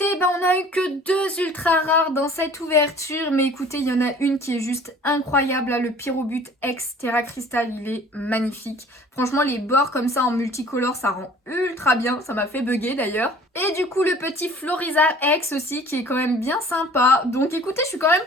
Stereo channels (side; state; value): both; normal; correlation 0.49